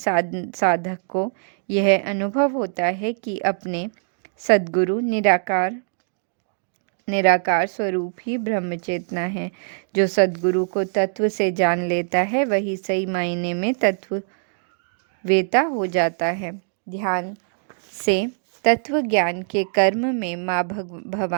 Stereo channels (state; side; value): silent; left; digital silence